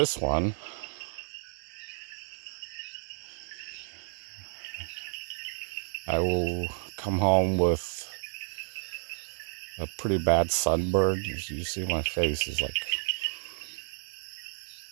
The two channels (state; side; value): silent; left; digital silence